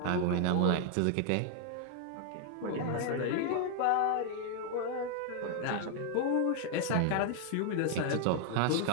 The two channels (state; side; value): different; both; correlation 0.00